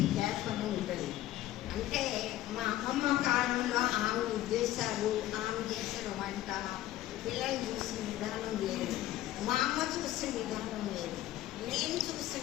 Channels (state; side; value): quieter; right; 14.4 dB